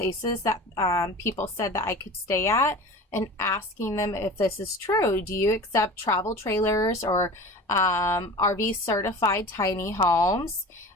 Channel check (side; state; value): both; normal; correlation 0.36